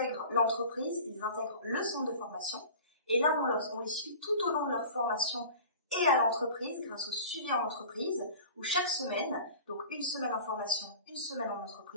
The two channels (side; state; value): both; inverted; correlation -0.40